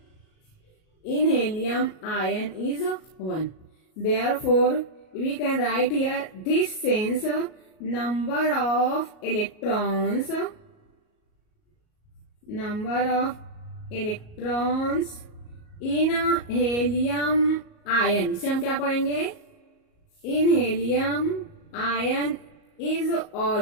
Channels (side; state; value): right; late; 38 ms